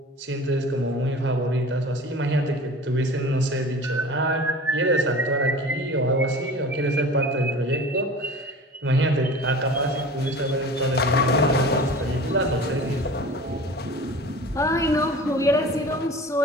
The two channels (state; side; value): normal; both; correlation 0.39